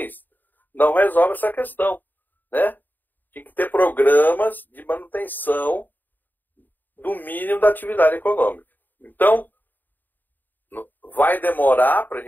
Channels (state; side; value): late; right; 0.089 ms